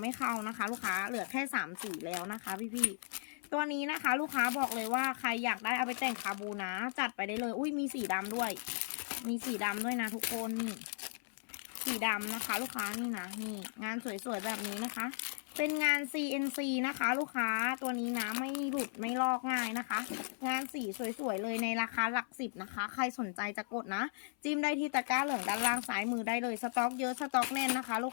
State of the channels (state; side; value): silent; right; 53 dB below the other